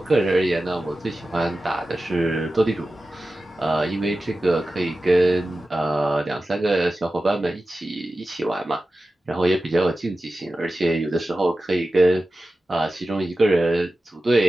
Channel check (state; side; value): normal; both; correlation 0.94